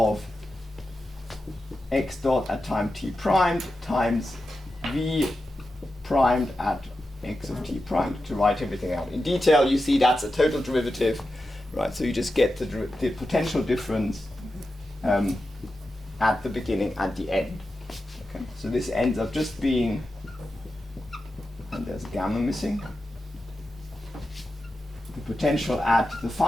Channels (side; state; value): both; normal; correlation 0.91